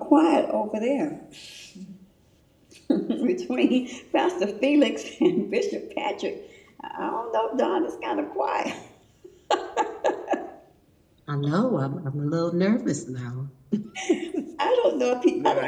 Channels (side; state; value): both; identical; correlation 1.00